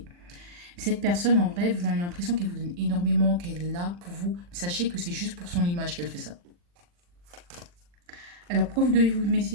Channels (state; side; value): late; left; 40 ms